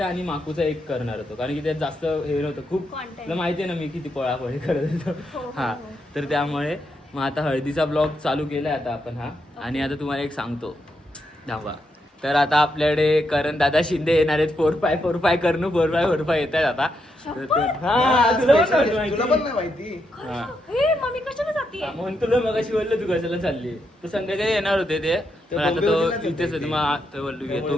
आणि माकूचा एक करणार होतो कारण की त्यात जास्त हे नव्हतं. खूप तुला माहिती आहे ना मी किती पळापळी करत होतो. हा, तर त्यामुळे मग आता हळदीचा ब्लॉग चालू केलाय आता आपण. हा, आणि आता तुम्हाला एक सांगतो धावा. तर आता आपल्याकडे करण दादा शिंदे येणार आहेत. 4x4 करणू 4x4 येत आहेत आता. तुला पण नाही माहिती. हे मम्मी कशाला जाते? म्हणून तुला मगाशी बोललो तू कशाला चालली. तो संध्याकाळी येणार होते ते, पण आता तो इथेच होते. मग तो बोललो की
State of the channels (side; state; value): both; normal; correlation 0.81